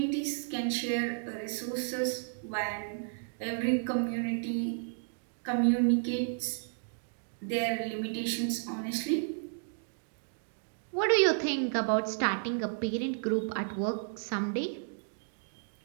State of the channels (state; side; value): silent; left; digital silence